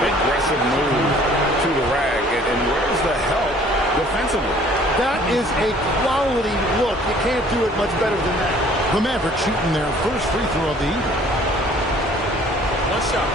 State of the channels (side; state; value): both; normal; correlation 0.55